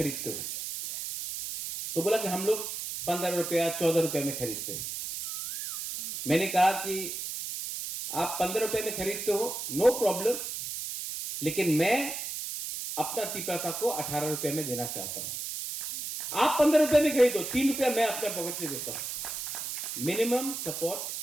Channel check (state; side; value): noise; right; hiss, 5 dB below the sound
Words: हो? तो बोला कि हम लोग 15 रुपया 14 रुपये में खरीदते हैं। मैंने कहा कि आप 15 रुपये में खरीदते हो, नो प्रॉब्लम, लेकिन मैं अपना तिपरासा को 18 रुपये में देना चाहता हूं। आप 15 रुपये में खरीदो, 3 रुपया मैं अपने पॉकेट से देता हूं। मिनिमम सपोर्ट